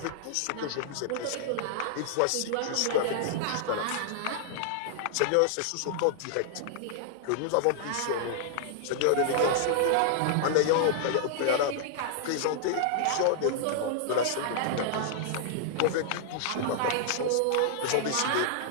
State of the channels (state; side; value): different; both; correlation -0.01